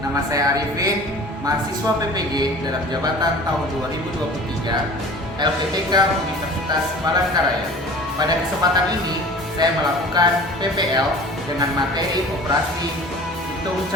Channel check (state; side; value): normal; both; correlation 0.42